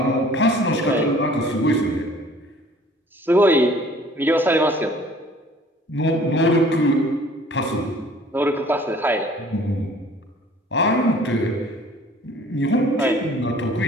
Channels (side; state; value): both; normal; correlation 0.52